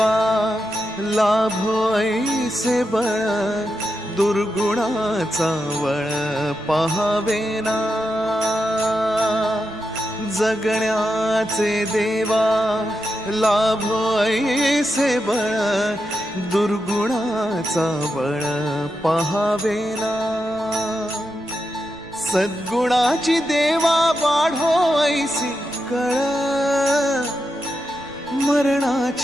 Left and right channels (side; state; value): right; noise; rumble, 24 dB below the sound